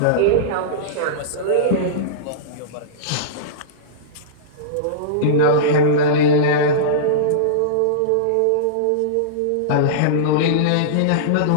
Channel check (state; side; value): different; both; correlation -0.03